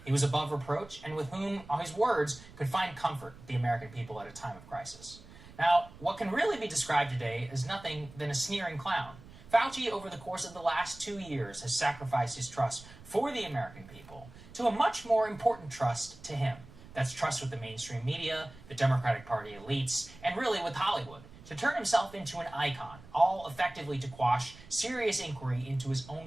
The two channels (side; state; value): right; noise; rumble, 19 dB below the sound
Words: He was above reproach and with whom, on his words, could find comfort the American people at a time of crisis. Now, what can really be described today is nothing than a sneering clown. Fauci, over the course of the last 2 years, has sacrificed his trust for the American people to a much more important trust to him. That's trust with the mainstream media, the Democratic Party elites, and really with Hollywood, to turn himself into an icon, all effectively to quash serious inquiry into his